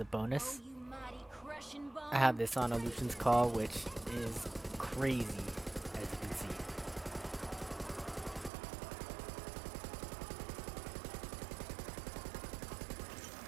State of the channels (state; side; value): drops out; left; at 8.5 s